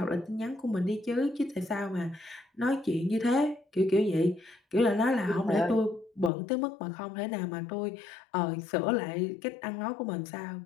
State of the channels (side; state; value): right; drops out; at 6.3 s